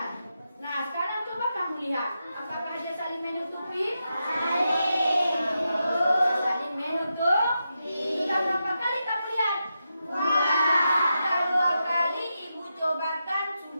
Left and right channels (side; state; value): both; inverted; correlation -0.87